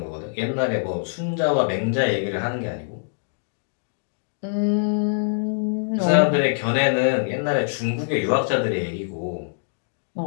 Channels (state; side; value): silent; right; digital silence